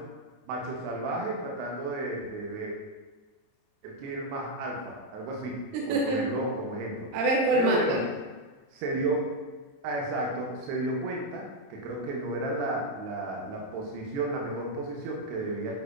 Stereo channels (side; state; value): left; late; 28 ms